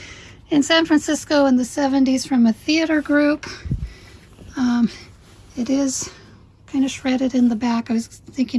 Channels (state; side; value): identical; both; correlation 1.00